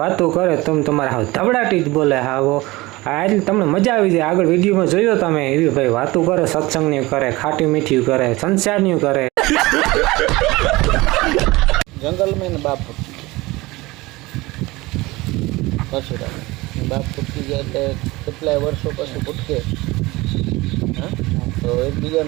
વાતો કરે તમે તમારા હાવ ધબડાટી જ બોલે હાવો આ તમને મજા આવી જાય। આગળ વિડીયોમાં જોયો તમે એવી ભાઈ વાતો કરે સત્સંગની કરે ખાટી મીઠી કરે સંસારની કરે। जंगल में न बाप परशुराम बाप फूटकी गया એટલે કેટલાય વર્ષો પછી ફૂટકે હા તો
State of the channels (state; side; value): quieter; left; 21.0 dB